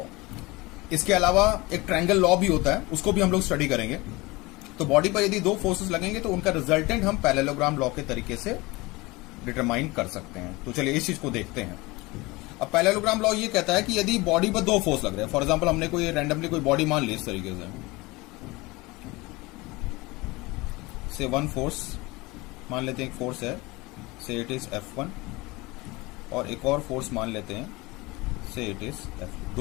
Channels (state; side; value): quieter; right; 22.8 dB